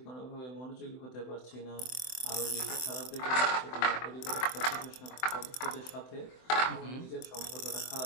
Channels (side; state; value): right; late; 24 ms